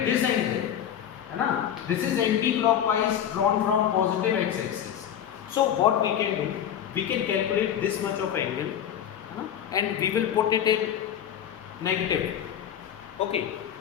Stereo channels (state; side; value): quieter; right; 9.7 dB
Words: this angle. This is anti-clockwise drawn from positive x-axis. So what we can do? We can calculate this much of angle, and we will put it in negative. Okay.